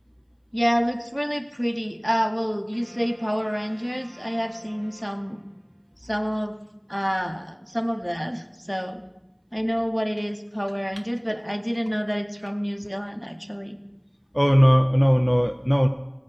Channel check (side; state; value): both; identical; correlation 1.00